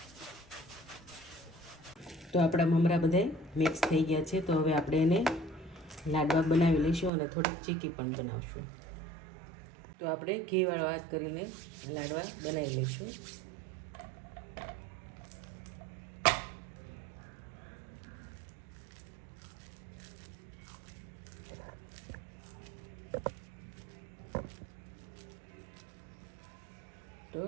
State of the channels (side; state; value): left; drops out; at 7.1 s